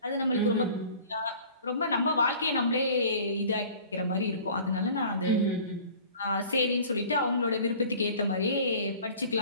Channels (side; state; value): both; inverted; correlation -0.46